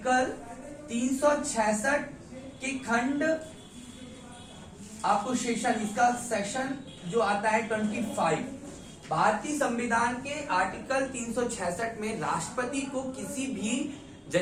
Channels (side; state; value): both; identical; correlation 1.00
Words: 366 के खंड आपको इसका सेक्शन जो आता है 25। भारतीय संविधान के आर्टिकल 366 में राष्ट्रपति को किसी भी